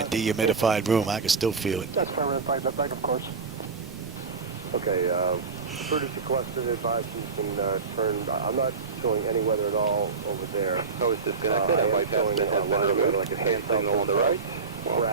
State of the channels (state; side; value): quieter; left; 4.9 dB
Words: dehumidified room. I can still feel it. That's fine, back of course. Okay, emergency collected advice you can turn. I'm not showing any weather at all over there. I was disconnected. I might have been removed. Like a hand signal on the right. Well,